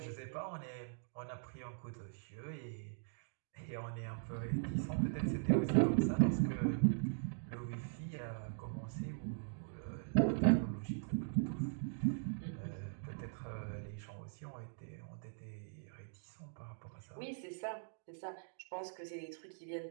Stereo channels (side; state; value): left; silent; digital silence